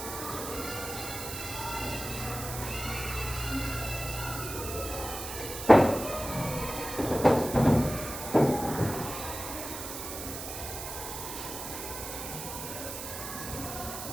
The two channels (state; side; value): noise; right; hiss, 7 dB below the sound